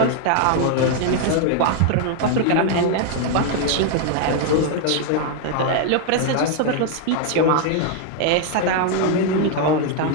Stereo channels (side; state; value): both; different; correlation 0.00